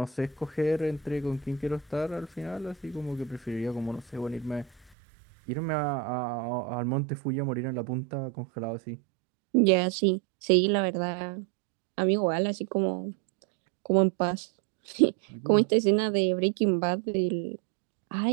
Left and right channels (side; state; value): left; drops out; at 4.9 s